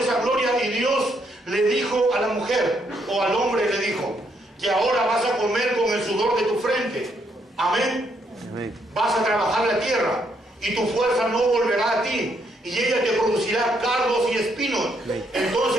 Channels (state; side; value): normal; both; correlation 0.74